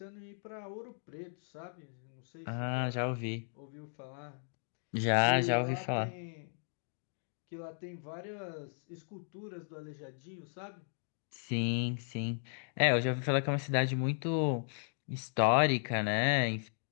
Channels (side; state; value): right; silent; digital silence